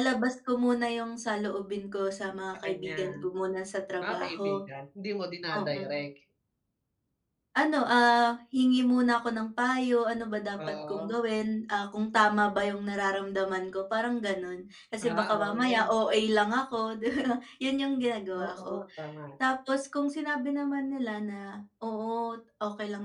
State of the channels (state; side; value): identical; both; correlation 1.00